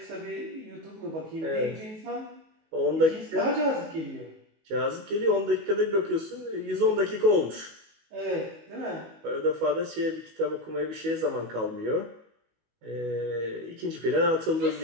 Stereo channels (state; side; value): late; left; 19 ms